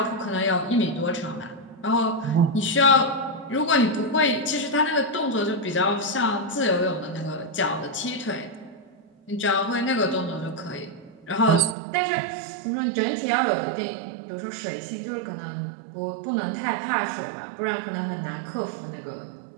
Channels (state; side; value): drops out; left; at 11.8 s